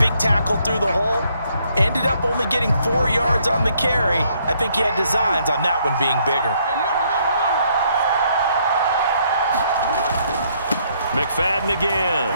tackle through the hole. Ended up only getting 4 yards on the carry. I think he had designs on that one being bigger. McFadden again.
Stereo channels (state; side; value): inverted; both; correlation -0.69